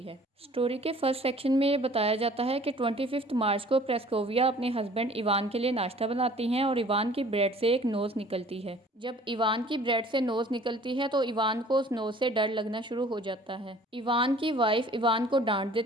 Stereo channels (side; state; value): both; normal; correlation 0.51